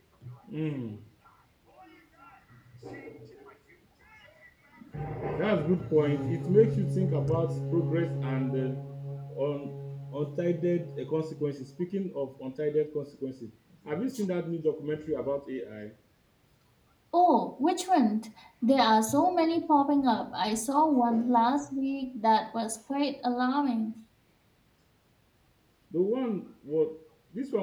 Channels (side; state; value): both; identical; correlation 1.00